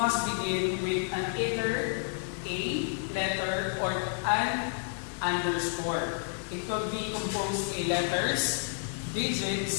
begin with an either a letter or an underscore. It could be composed of letters,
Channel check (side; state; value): right; silent; 58 dB below the other